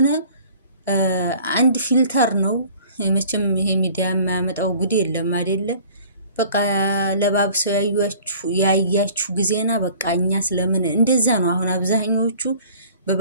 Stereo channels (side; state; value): both; inverted; correlation -0.50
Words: አንድ ፊልተር ነው። መቼም ይሄ ሚዲያ የማያመጣው ጉድ የለም አይደለ? በቃ ለባብሰው ያያችሁ ጊዜና በቃ እኛ ስለምን እንደዛ ነው። አሁን አብዛኞቹ